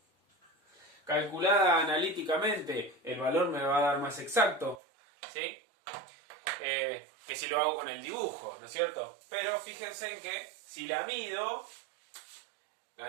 Calculada analíticamente, el valor me va a dar más exacto, ¿sí? Que si lo hago con el dibujo, ¿no es cierto? Pero fíjense en que si la mido, la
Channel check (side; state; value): left; drops out; at 4.8 s